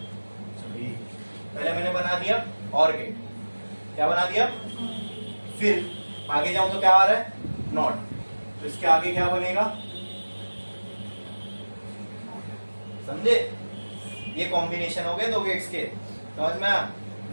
और गेट, क्या बना दिया, फिर आगे जाऊं तो क्या आ रहा है, नॉट, तो इसके आगे क्या बनेगा, समझे? ये कॉम्बिनेशन हो गए 2 गेट्स के, समझ में?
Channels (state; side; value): inverted; both; correlation -1.00